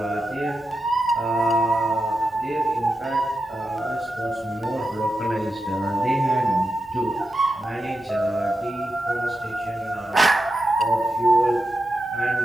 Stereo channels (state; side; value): normal; both; correlation 0.89